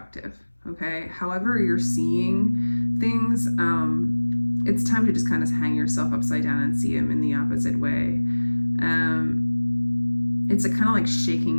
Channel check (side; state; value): both; inverted; correlation -1.00